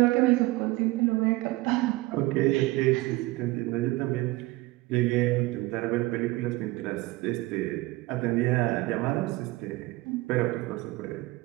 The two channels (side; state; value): left; quieter; 20.5 dB